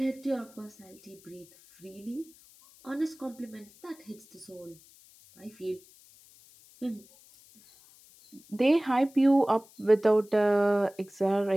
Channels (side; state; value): left; noise; hiss, 25 dB below the sound